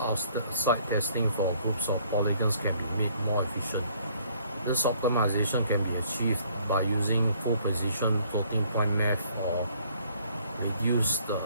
testing for groups of polygons can be made more efficient. This optimization can be achieved by using full precision floating point math or reduced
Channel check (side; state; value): both; inverted; correlation -0.61